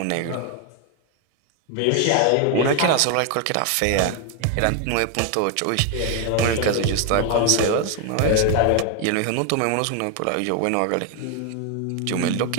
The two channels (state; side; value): different; both; correlation 0.01